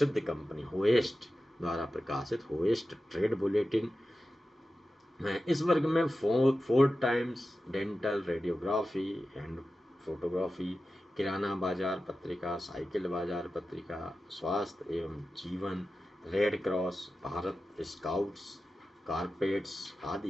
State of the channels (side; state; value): both; normal; correlation 0.93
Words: कंपनी होएस्ट द्वारा प्रकाशित होएस्ट ट्रेड बुलेटिन। इस वर्ग में Ford Times, dental, radiography and photography, किराना बाजार पत्रिका, साइकिल बाजार पत्रिका, स्वास्थ्य एवं जीवन, red cross, Bharat scouts, carpets